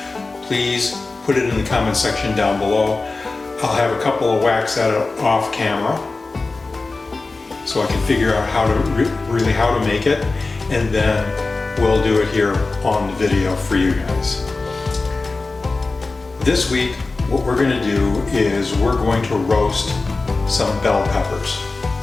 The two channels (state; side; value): quieter; right; 3.6 dB